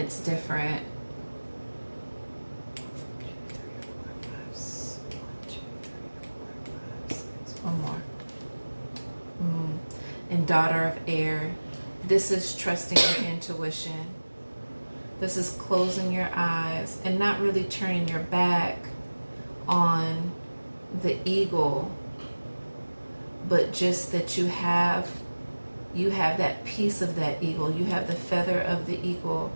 different. One more. And Daughter of Air. This is trusting your intuition. This is closing your eyes and not really turning your back on the eagle, but just that you have that piece of that eagle. You have the feather of the eagle,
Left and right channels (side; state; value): both; inverted; correlation -1.00